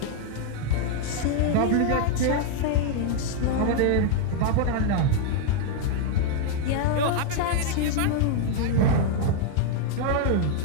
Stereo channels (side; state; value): both; different; correlation 0.00